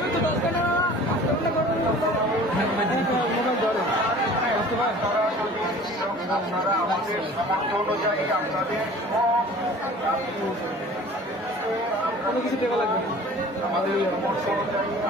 আপনারা আমাদের সামর্থ্য অনুযায়ী আপনাদের সব কিছু দেওয়া লাগবে আমাদের সামর্থ্য অনুযায়ী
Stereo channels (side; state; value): both; normal; correlation 0.45